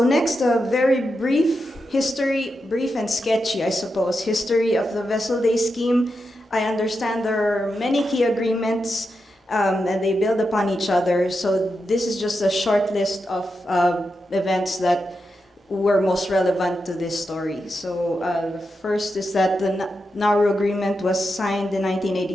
next, a very brief history, brief and sketchy, I suppose, history of the Vessel Day Scheme. I understand there are many key agreements and they build upon each other. So this is just a short list of events that were most relevant to this story. So the first is that the Nauru Agreement was signed in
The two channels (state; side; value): normal; both; correlation 0.87